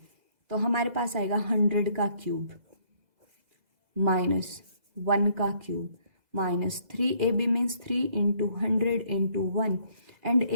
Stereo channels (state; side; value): late; left; 2.0 ms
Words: तो हमारे पास आएगा 100 का क्यूब माइनस 1 का cube minus 3ab means 3 into 100 into 1 and